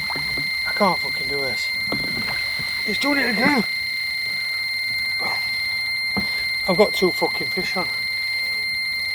I can't fucking do this. It's doing it again. I've got 2 fucking fish on.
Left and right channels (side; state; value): both; identical; correlation 1.00